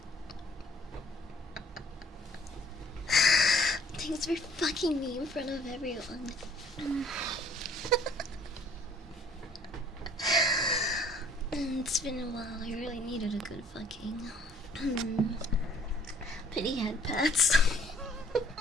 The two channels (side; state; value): both; normal; correlation 0.57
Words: Thanks for fucking me in front of everyone. It's been a while. I really needed a good fucking. Pity head pats.